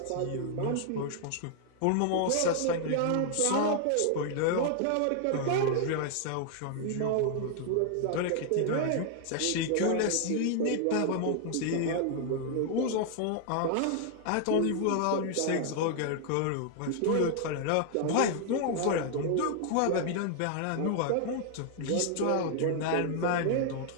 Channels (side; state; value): both; different; correlation 0.00